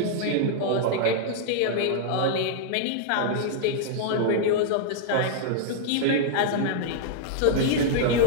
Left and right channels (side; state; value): both; different; correlation -0.01